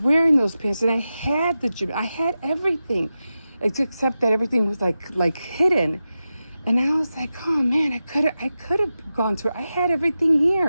wearing those pants, and I had the gym. I had everything, except that everything was like hidden. And I was like, oh man, I could have gone to it. I had everything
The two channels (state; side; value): inverted; both; correlation -0.92